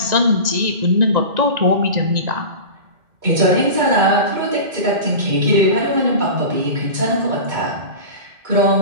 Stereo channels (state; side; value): late; left; 1.9 ms